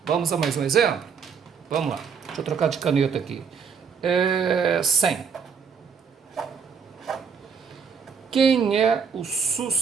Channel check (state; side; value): quieter; left; 6.4 dB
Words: Vamos a mais um exemplo? Vamos lá. Deixa eu trocar de caneta aqui. 100. Quem é o